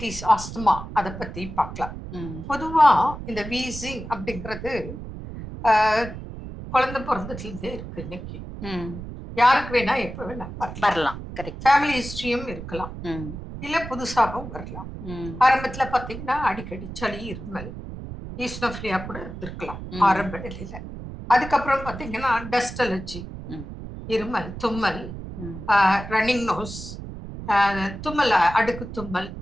ஆஸ்துமா அதை பத்தி பார்க்கலாம். பொதுவா இந்த வீசிங் அப்படிங்கிறது குழந்தை பிறந்ததுலேருந்தே இருக்கு. இன்னைக்கு யாருக்கு வேணா எப்ப வேணா வரலாம். ஃபேமிலி ஹிஸ்டரியும் இருக்கலாம், இல்ல புதுசாகவும் வரலாம். ஆரம்பத்துல பாத்தீங்கன்னா அடிக்கடி சளி, இருமல், ஈஸ்னோஃபிலியா கூட இருந்திருக்கலாம் ஆரம்ப நிலையில. அதுக்கப்புறம் பாத்தீங்கன்னா டஸ்ட் அலர்ஜி, இருமல், தும்மல், ரன்னிங் நோஸ், தும்மல், அடுக்கு தும்மல்,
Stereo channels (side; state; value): right; noise; rumble, 10 dB below the sound